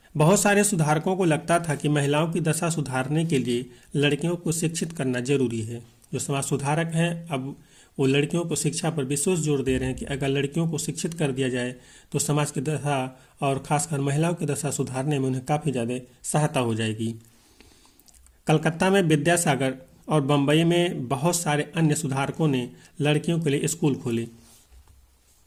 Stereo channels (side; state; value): both; identical; correlation 1.00